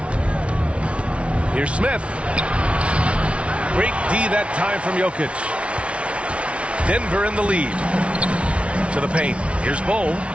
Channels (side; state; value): left; late; 0.061 ms